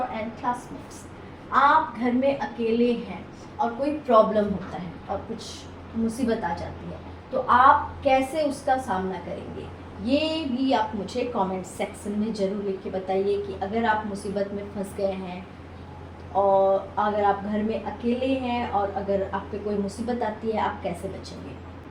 and classmates. आप घर में अकेले हैं और कोई प्रॉब्लम होता है और कुछ मुसीबत आ जाती है, तो आप कैसे उसका सामना करेंगे ये भी आप मुझे कमेंट सेक्शन में ज़रूर लिख के बताइए कि अगर आप मुसीबत में फंस गए हैं और अगर आप घर में अकेले हैं और अगर आप पे कोई मुसीबत आती है आप कैसे बचेंगे.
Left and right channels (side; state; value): both; identical; correlation 1.00